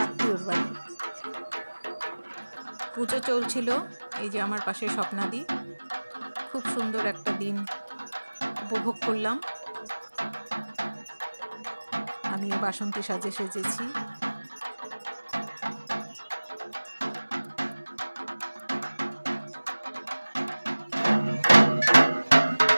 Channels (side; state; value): both; inverted; correlation -1.00